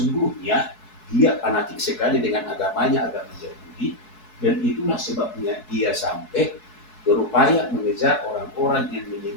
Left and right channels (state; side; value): late; right; 4.7 ms